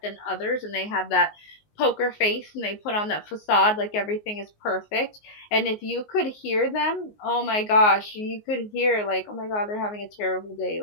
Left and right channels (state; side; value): late; right; 19 ms